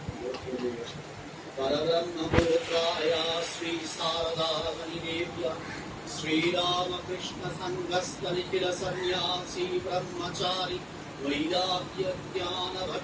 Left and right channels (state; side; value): identical; both; correlation 1.00